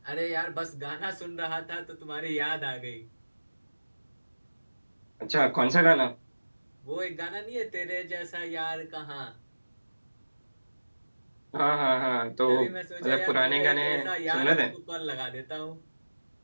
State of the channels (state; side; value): inverted; both; correlation -1.00